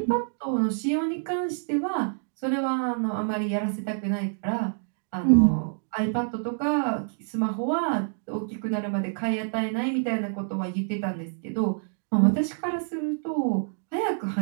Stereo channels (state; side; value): silent; left; digital silence